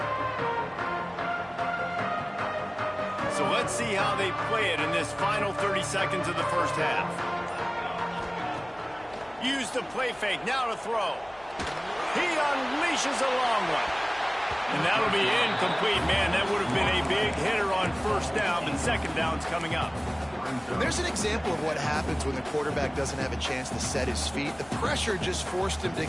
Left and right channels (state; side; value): noise; left; hum, 26 dB below the sound